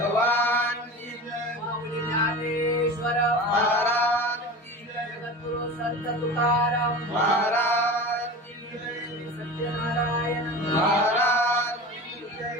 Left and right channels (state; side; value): normal; both; correlation 0.32